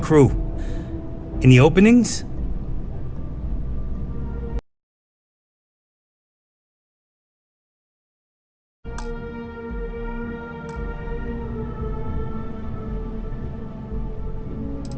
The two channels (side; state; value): both; identical; correlation 1.00